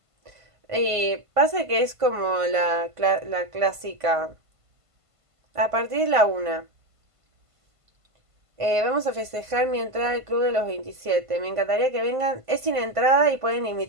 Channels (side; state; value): left; late; 1.5 ms